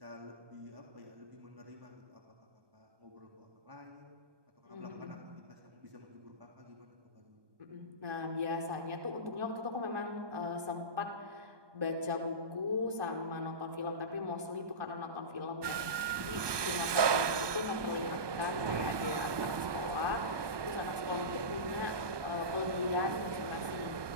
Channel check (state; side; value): late; left; 1.2 ms